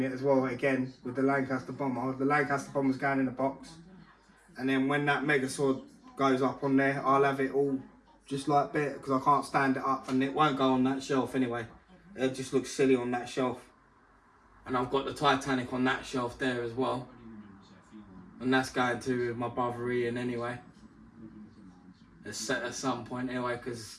as well again with the Lancaster bomber. The Lancaster bomber's going in the box, and then when that Megazord goes up on there, I'll have it all just like that, because I can't stand it up, and it won't go on that shelf anyway. It just looks silly on that shelf. And I've got the Titanic on that shelf there as well, and that's going to my brother Ian anyway. It's set at some point anyway, because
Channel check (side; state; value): both; identical; correlation 1.00